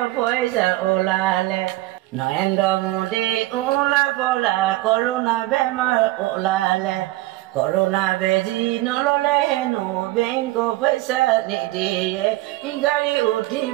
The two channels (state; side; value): quieter; left; 18.1 dB